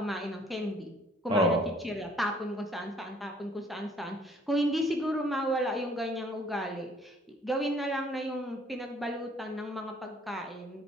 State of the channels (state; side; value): normal; both; correlation 0.59